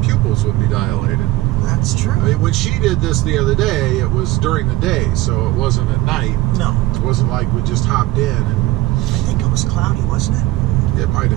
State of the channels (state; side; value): quieter; left; 17.6 dB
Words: pupils would be dilated. That's true. I mean, when she did this the other day, it was during the day, so it wasn't at night. No. It wasn't like we just hopped in and... I think it was cloudy, wasn't it? It might